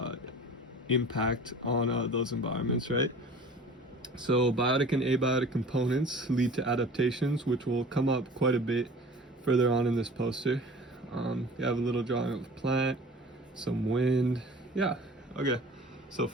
impact on those environments, right? So biotic and abiotic components lead to adaptations, which will come up quite a bit further on in this poster. You have a little drawing of a plant, some wind. Yeah, okay. So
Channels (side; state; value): both; normal; correlation 0.43